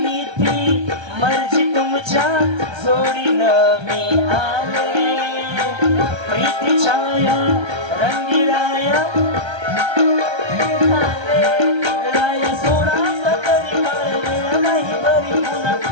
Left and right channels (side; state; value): left; late; 1.3 ms